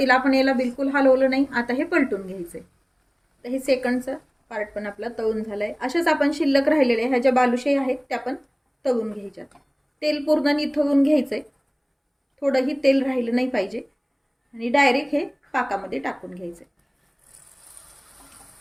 आपण याला बिलकुल हलवलं नाही. आता हे पलटून घ्यायचंय. तर हे सेकंडचं पार्ट पण आपला तळून झालंय. अशाच आपण शिल्लक राहिलेले ह्या ज्या बालुशाही आहेत त्या पण तळून घ्यायच्या. तेल पूर्ण निथळून घ्यायचंय. थोडंही तेल राहिलं नाही पाहिजे आणि डायरेक्ट हे पाकामध्ये टाकून घ्यायचंय.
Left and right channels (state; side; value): identical; both; correlation 1.00